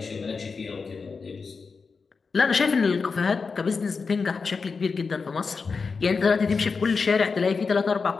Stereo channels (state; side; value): quieter; right; 4.9 dB